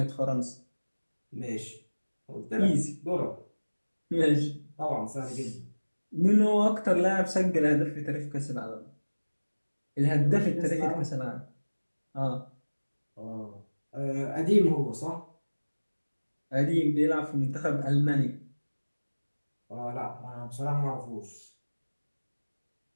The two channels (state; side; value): inverted; both; correlation -1.00